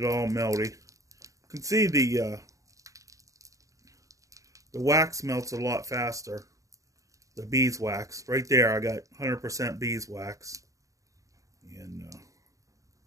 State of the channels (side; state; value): left; late; 0.16 ms